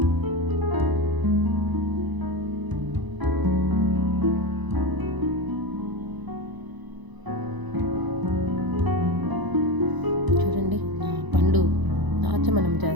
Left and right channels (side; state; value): left; late; 1.0 ms